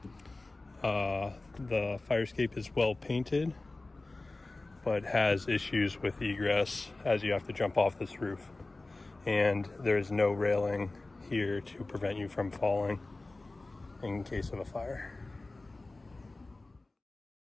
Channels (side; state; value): right; quieter; 3.1 dB